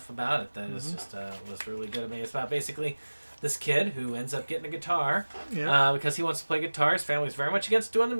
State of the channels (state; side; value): inverted; both; correlation -1.00